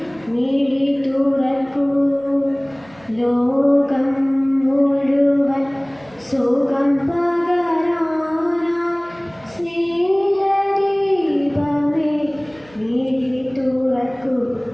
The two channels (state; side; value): noise; right; hum, 26 dB below the sound